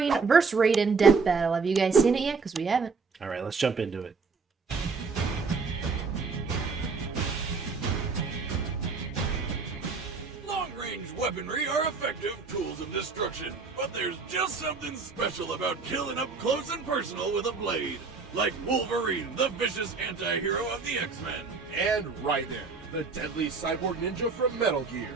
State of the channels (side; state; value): left; quieter; 4.7 dB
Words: vs. Raiden Death Battle. Have you guys seen it yet? Because we haven't. Alright, let's jump into it. Long-range weaponry are effective tools of destruction, but there's just something special about killing up close and personal with a blade. Like Wolverine, the vicious anti-hero of the X-Men. And Raiden, the deadly cyborg ninja from Metal Gear.